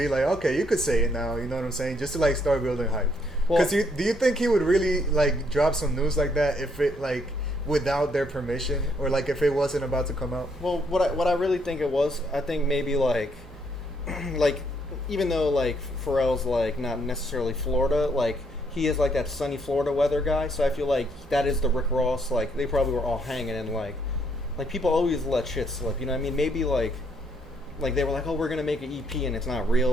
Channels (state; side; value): normal; both; correlation 0.70